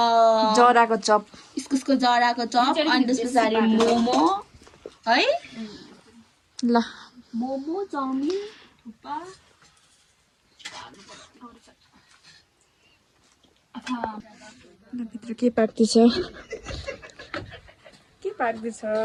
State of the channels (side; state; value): both; identical; correlation 1.00